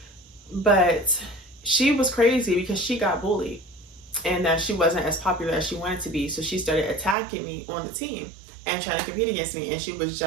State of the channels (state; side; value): drops out; left; at 7.2 s